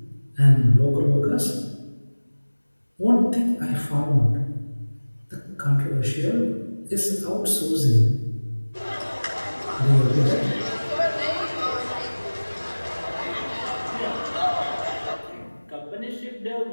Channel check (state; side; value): inverted; both; correlation -1.00